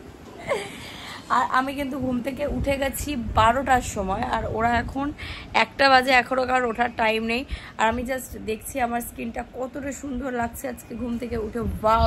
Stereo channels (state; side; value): identical; both; correlation 1.00